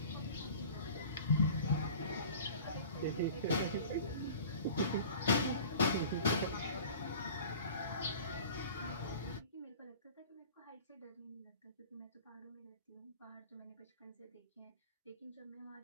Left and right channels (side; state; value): both; inverted; correlation -0.41